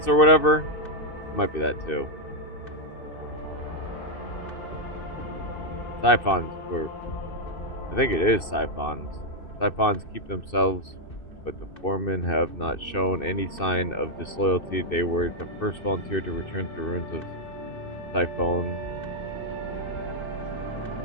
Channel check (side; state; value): right; late; 2.6 ms